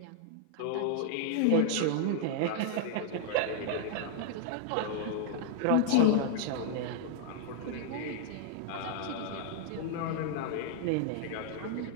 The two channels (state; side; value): different; both; correlation -0.01